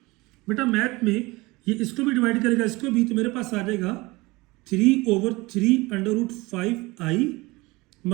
बेटा मैथ में ये इसको भी डिवाइड करेगा इसको भी, तो मेरे पास आ जाएगा 3 over 3 under root 5i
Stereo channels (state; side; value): quieter; left; 22.4 dB